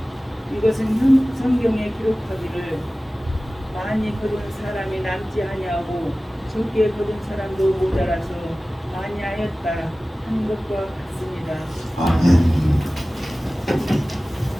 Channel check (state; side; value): normal; both; correlation 0.97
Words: 이것은 성경에 기록하기를 많이 거둔 사람이 남지 아니하고 적게 거둔 사람도 모자라서 많이 하였다 하는 것과 같습니다. 아멘.